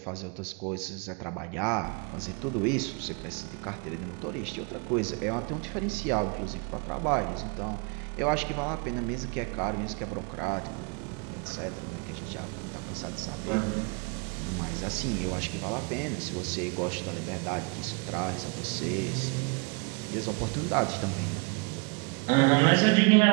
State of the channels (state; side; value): quieter; left; 32.4 dB